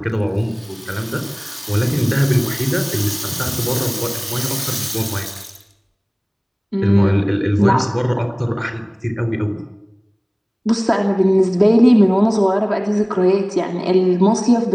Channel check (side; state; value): both; identical; correlation 1.00